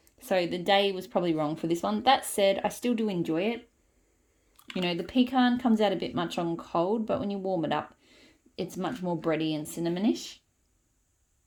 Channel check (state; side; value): identical; both; correlation 1.00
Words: So the day was probably wrong for this one. That said, I still do enjoy it. The pecan comes out a bit much on cold, but when you warm it up, it's much more bready and cinnamonish.